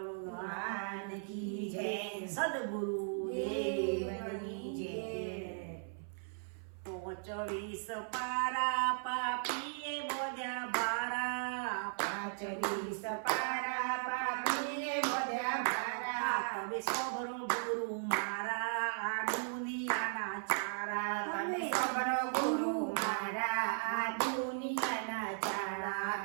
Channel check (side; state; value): left; silent; 53 dB below the other